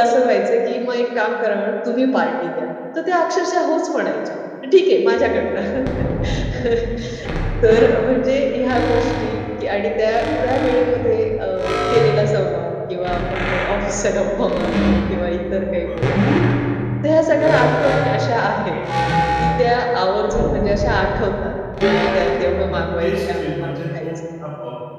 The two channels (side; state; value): both; identical; correlation 1.00